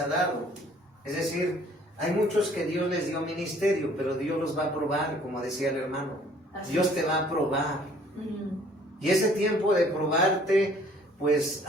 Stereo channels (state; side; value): normal; both; correlation 0.57